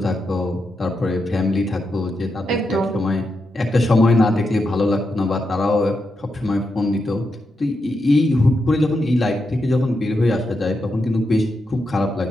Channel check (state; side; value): normal; both; correlation 0.85